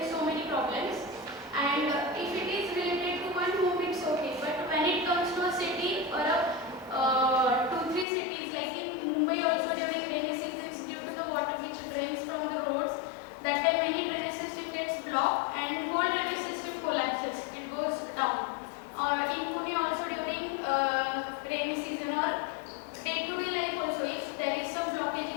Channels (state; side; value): drops out; right; at 8.1 s